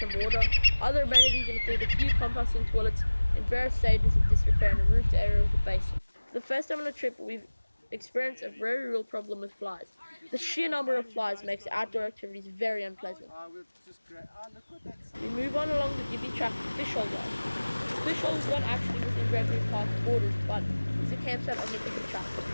water. Other amenities include a few composting toilets in various stages of disrepair and a roofed area with a basin. For the first time on a trip, we've experienced a very real problem with flies. The sheer number of flies makes outdoor activities very unpleasant. We move on along the Gibby track to Fishhole Yard. Fishhole is not actually within Gregory Park borders, but is a campsite on the Gibby track.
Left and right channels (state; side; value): inverted; both; correlation -1.00